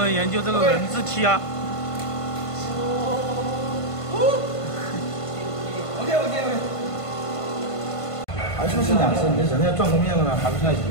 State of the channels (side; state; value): right; late; 1.5 ms